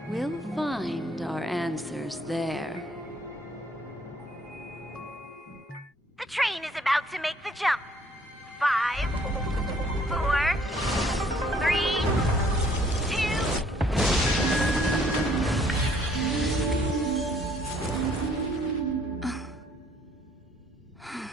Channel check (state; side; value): normal; both; correlation 0.62